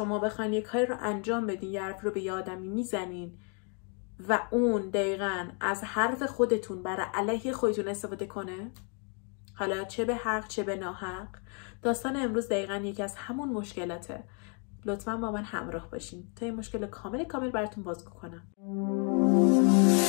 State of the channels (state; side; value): quieter; right; 39.1 dB